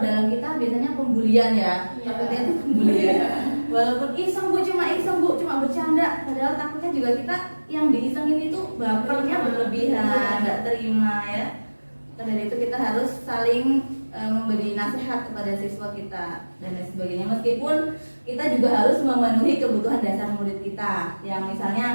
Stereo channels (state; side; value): inverted; both; correlation -1.00